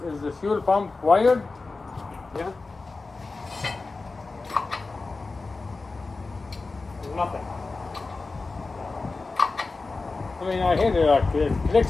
the fuel pump wired? Yeah. There's nothing. I mean, I hear it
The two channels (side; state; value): right; quieter; 3.8 dB